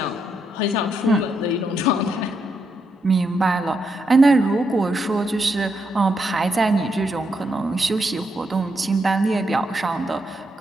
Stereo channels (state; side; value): normal; both; correlation 0.80